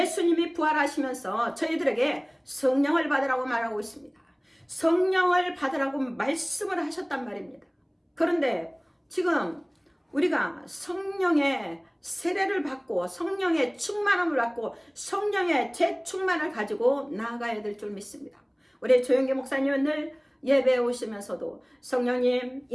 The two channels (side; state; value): both; identical; correlation 1.00